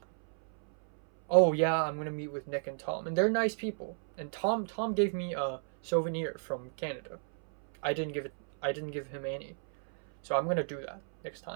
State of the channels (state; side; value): silent; left; 56 dB below the other